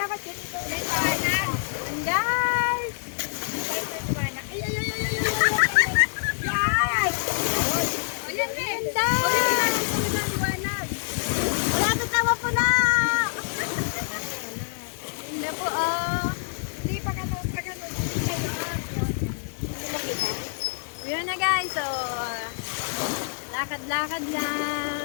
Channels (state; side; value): silent; right; digital silence